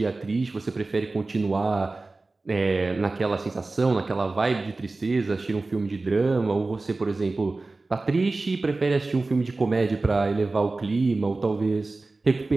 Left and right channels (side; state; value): left; quieter; 3.4 dB